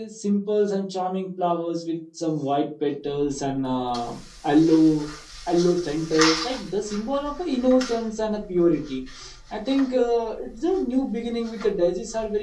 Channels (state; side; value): identical; both; correlation 1.00